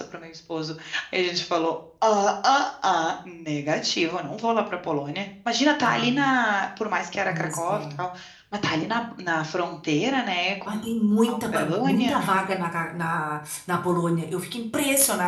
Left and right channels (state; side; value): identical; both; correlation 1.00